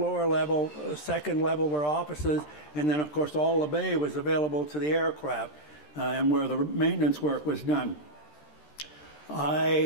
level. Second level were offices, and then, of course, all the bay was available to the aircraft. And where the maintenance work was done.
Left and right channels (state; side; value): late; right; 13 ms